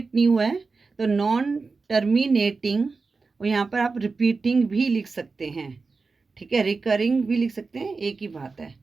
नहीं हुआ है, तो नॉन टर्मिनेटिंग। और यहाँ पर आप रिपीटिंग भी लिख सकते हैं। ठीक है, रिकरिंग भी लिख सकते हैं, एक ही बात है।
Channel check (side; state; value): left; quieter; 4.2 dB